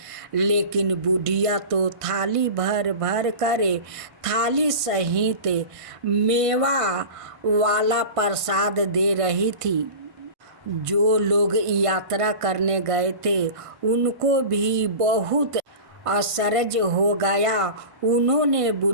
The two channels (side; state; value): left; late; 1.5 ms